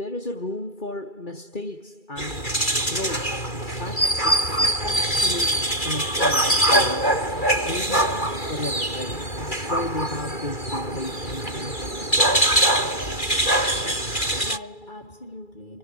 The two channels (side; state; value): right; late; 2.3 ms